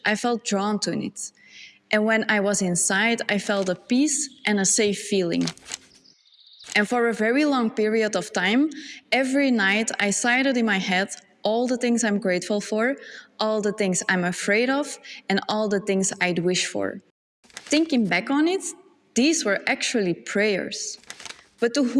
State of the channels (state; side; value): identical; both; correlation 1.00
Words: I felt drawn to it. And when I was inside, I felt a peace and a safe feeling. And for a very long period of time, every night I cited in my head all the things I'm grateful for, all the things I'm afraid of, and all the things I'd wish for. Thinking back on it, these were actually prayers. But to